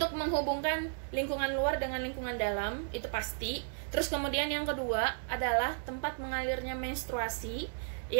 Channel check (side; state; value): left; silent; digital silence